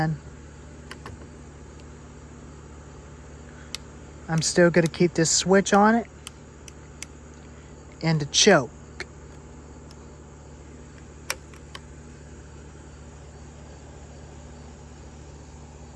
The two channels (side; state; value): both; identical; correlation 1.00